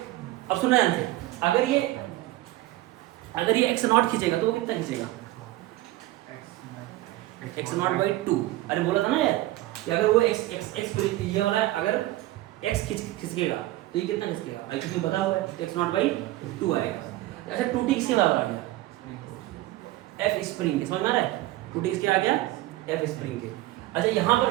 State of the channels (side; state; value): left; quieter; 16.9 dB